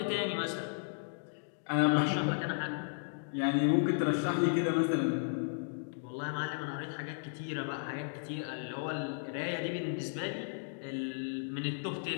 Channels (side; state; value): right; silent; digital silence